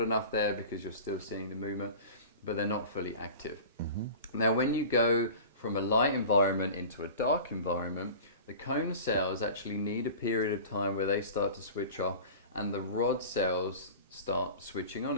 enough there because you're still seeing the movement, but they're not fully active. Now when you go from a light environment into a dark environment, the cone cells actually need a period of time where they start to switch off and the rod cells start switching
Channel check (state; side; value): inverted; both; correlation -0.37